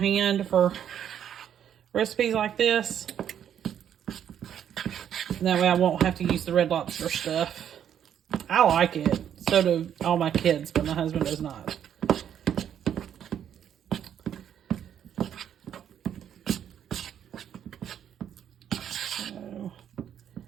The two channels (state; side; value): quieter; left; 9.4 dB